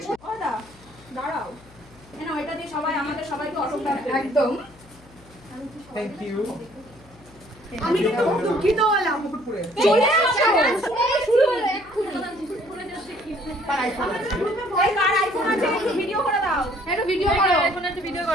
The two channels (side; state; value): left; noise; hum, 25 dB below the sound